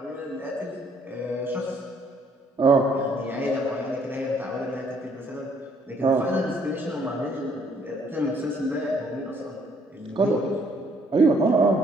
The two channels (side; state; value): both; normal; correlation 0.65